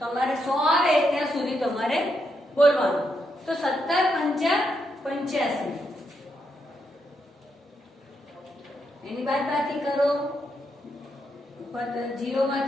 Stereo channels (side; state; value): both; normal; correlation 0.81